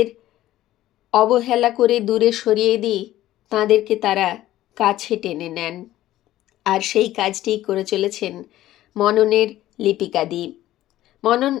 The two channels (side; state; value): right; quieter; 14.5 dB